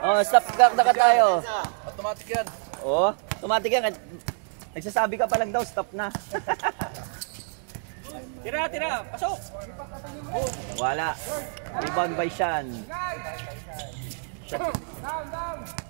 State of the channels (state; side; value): silent; left; digital silence